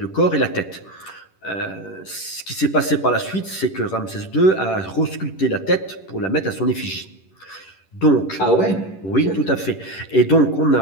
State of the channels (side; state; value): right; late; 10 ms